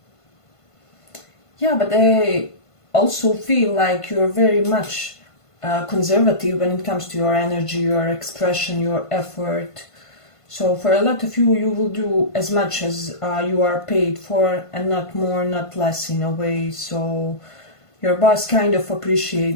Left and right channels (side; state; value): right; late; 1.5 ms